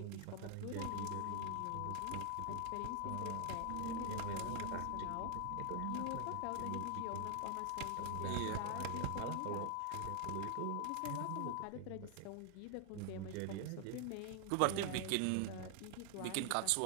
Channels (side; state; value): both; different; correlation 0.00